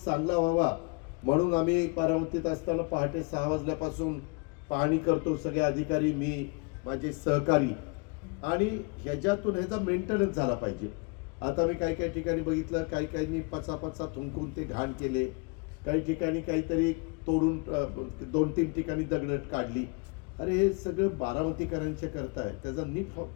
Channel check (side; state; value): right; quieter; 30.6 dB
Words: चांगला व्हावा म्हणून आम्ही बारामतीत असताना पहाटे 6 वाजल्यापासून पाहणी करतो, सगळे अधिकारी, मी, माझे सहकारी, आणि ह्याच्यातून ह्याचा मेंटेनन्स झाला पाहिजे। आता मी काही ठिकाणी बघितलं, काही पचापचा थुंकून ते घाण केले, काही ठिकाणी काहीतरी तोडून 2-3 ठिकाणी दगडट काढली। अरे हे सगळं बारामतीकरांच्या करताय, त्याचा नीट